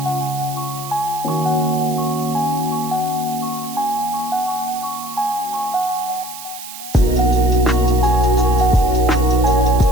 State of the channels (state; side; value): noise; right; hiss, 12 dB below the sound